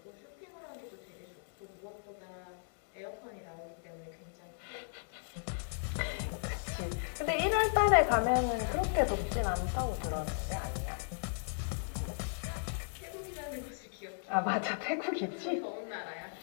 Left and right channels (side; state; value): right; silent; digital silence